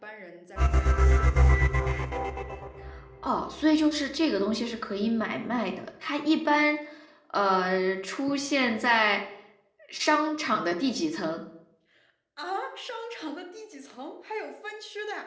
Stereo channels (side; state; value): both; identical; correlation 1.00